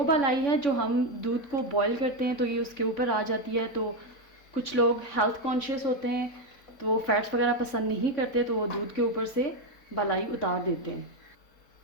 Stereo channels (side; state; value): right; late; 3.5 ms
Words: बालाई है जो हम दूध को बॉईल करते हैं तो ये उसके ऊपर आ जाती है। तो कुछ लोग हेल्थ कॉन्शियस होते हैं तो वो फैट्स वगैरह पसंद नहीं करते, तो वो दूध के ऊपर से बालाई उतार देते हैं।